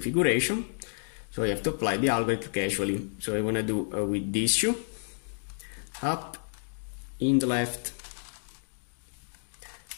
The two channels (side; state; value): right; silent; digital silence